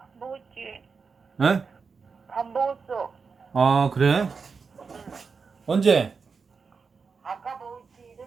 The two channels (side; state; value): left; quieter; 5.2 dB